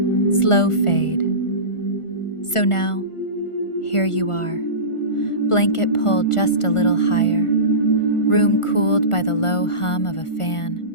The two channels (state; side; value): late; right; 1.4 ms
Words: Slow fade. So now, here you are. Blanket pulled just a little higher, room cooled by the low hum of a